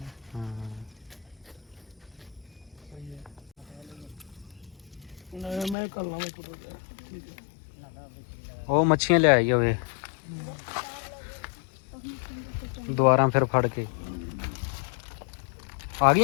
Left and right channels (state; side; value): drops out; right; at 5.8 s